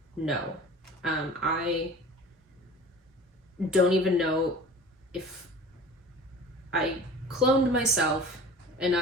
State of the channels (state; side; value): normal; both; correlation 0.41